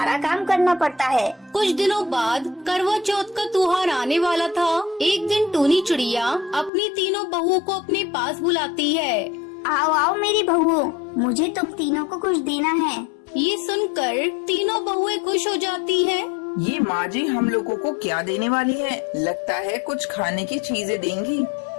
काम करना पड़ता है। कुछ दिनों बाद करवा चौथ का त्योहार आने वाला था। एक दिन टूनी चिड़िया अपनी तीनों बहुओं को अपने पास बुलाती है। आओ आओ मेरी बहुओं, मुझे तुम तीनों को कुछ देना है। ये सुनकर तीनों बहुएं खुश हो जाती हैं। ये माँ जी हम लोगों को क्या देने वाली है? लगता है कुछ खाने की चीजें देंगी।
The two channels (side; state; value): right; drops out; at 6.7 s